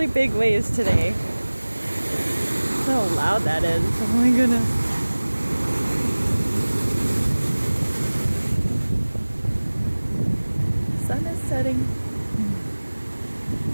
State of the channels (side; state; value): both; inverted; correlation -1.00